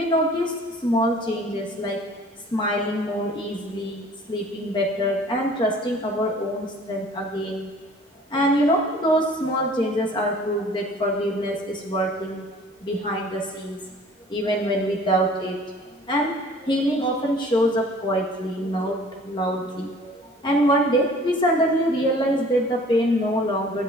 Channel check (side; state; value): both; normal; correlation 0.50